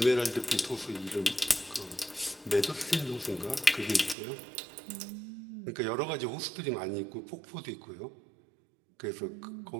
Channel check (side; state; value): left; drops out; at 4.2 s